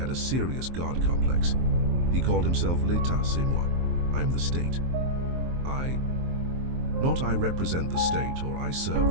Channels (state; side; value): late; left; 23 ms